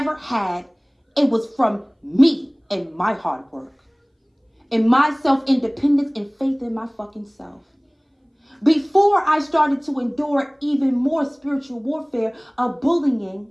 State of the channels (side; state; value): both; identical; correlation 1.00